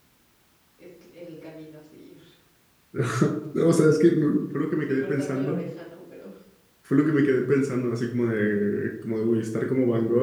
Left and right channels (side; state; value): both; identical; correlation 1.00